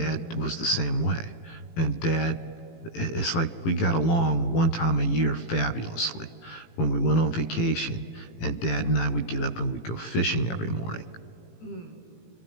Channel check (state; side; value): late; right; 18 ms